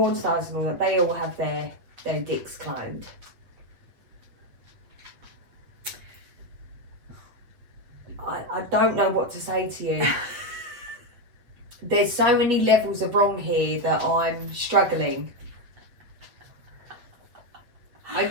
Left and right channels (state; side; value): late; left; 8.5 ms